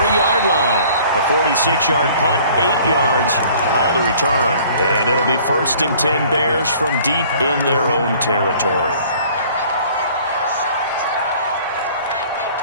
line. A 46-yard punt, 8 yards on the return. And it'll be 1st and 10 Bears from deep in their own territory.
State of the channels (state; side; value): inverted; both; correlation -0.52